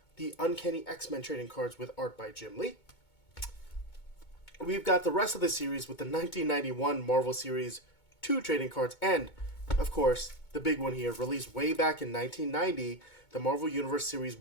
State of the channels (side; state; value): right; late; 2.2 ms